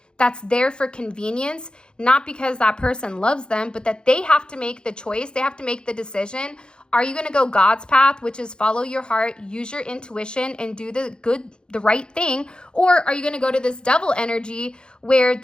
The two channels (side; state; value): right; late; 0.049 ms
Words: that's there for convenience, not because that person loves them, but that they have to make the choice. They have to make the decision. Are you going to go God's path, which is follow your heart, use your intuition, and do the right thing? Or are you going to go to this devil energy where